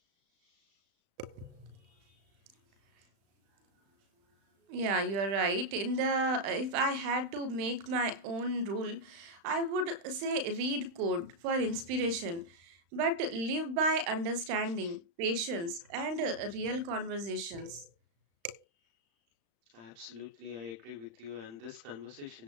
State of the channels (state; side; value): late; left; 35 ms